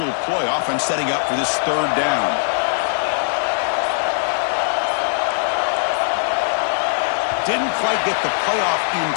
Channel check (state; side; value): silent; right; digital silence